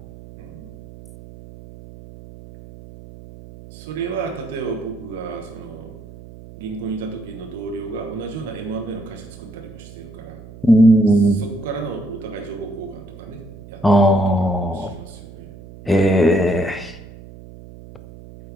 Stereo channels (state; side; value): noise; right; hum, 17 dB below the sound